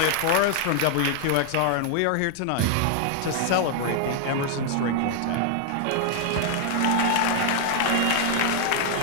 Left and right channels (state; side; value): different; both; correlation 0.00